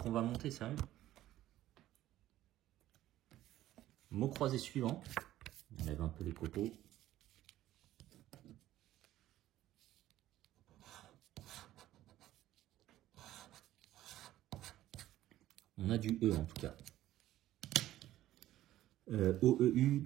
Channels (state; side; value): quieter; left; 14.1 dB